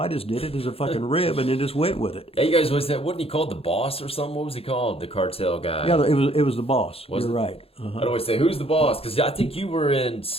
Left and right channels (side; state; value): right; late; 0.28 ms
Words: just did it as a fucking rib and then just went with it. Yeah, you guys wasn't he called the boss or something? What was he called? The cartel guy. Yeah, it was the boss. You're right. I'd always say, who's the boss? Because I think you were in